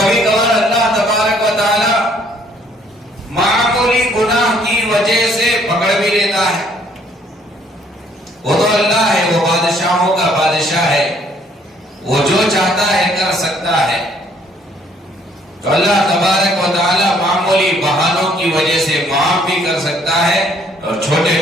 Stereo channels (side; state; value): both; normal; correlation 0.64